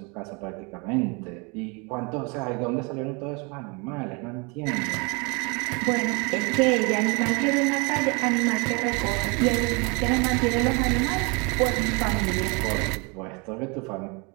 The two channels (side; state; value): left; quieter; 30.6 dB